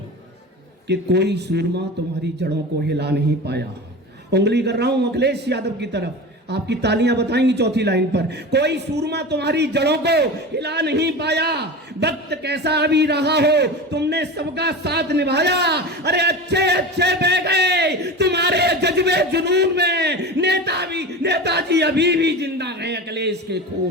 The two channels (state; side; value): normal; both; correlation 0.29